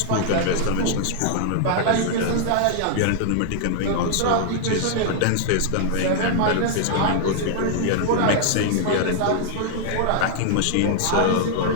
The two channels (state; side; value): different; both; correlation -0.01